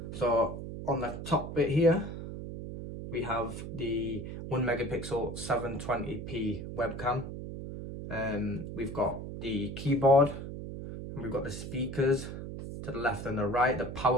So on the top bit here we have the 1 megapixel 720p webcam. We've got the keyboard, and we've got the speakers to the left and the right. The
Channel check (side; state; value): right; noise; hum, 8 dB below the sound